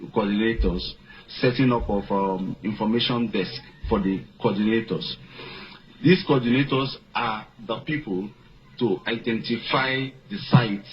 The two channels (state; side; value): identical; both; correlation 1.00